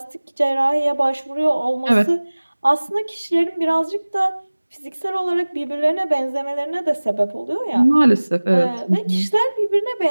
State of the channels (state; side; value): inverted; both; correlation -1.00